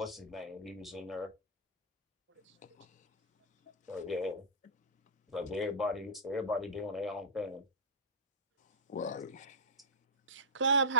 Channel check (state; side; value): normal; both; correlation -0.13